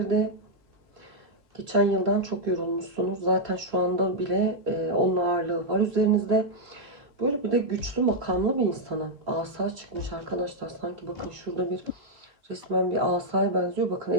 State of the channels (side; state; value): left; late; 3.0 ms